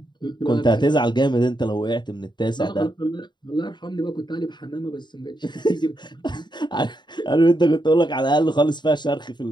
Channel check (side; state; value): right; late; 0.22 ms